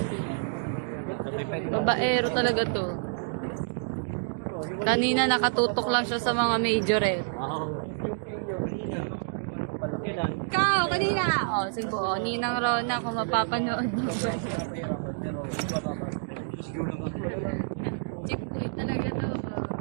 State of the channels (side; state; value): left; silent; digital silence